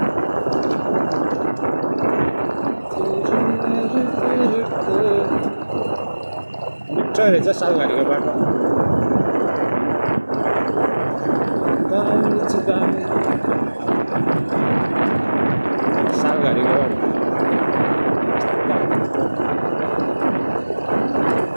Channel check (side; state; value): both; inverted; correlation -1.00